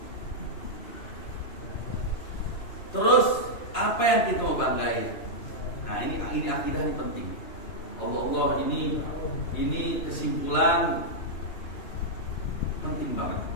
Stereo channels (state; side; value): late; right; 2.9 ms